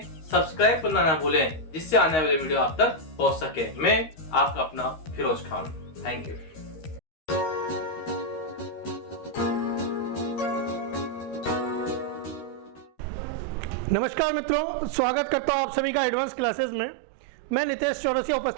सब्सक्राइब करना ना भूलें, जिससे आने वाले वीडियो आप तक पहुंच सके। मैं आपका अपना फिरोज खान, थैंक यू। नमस्कार मित्रों, स्वागत करता हूं आप सभी का एडवांस क्लासेस में। मैं नितेश चौरसिया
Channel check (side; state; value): right; late; 13 ms